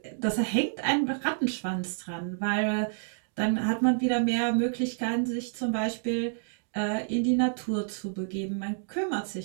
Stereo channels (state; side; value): silent; left; digital silence